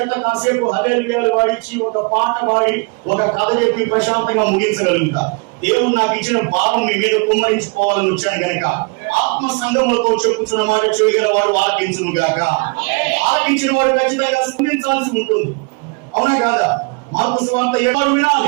కాసేపు హల్లెలూయాలు వాడిచ్చి ఒక పాట పాడి ఒక కథ చెప్పి ప్రశాంతంగా ముగించగలుగుతా. దేవుడు నాకు ఇచ్చిన భావం మీ మీద కుమ్మరించుకోవాలని వచ్చాను కనుక ఆత్మ సంఘములతో చెప్పుచున్న మాట చెవిగల వాడు ఆలకించును గాక. ఆలకించిన వాడు ఖచ్చితంగా స్పందించాల్సి ఉంటుంది. అవునా కాదా? మార్కు సువార్త 7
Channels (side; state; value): left; quieter; 31.1 dB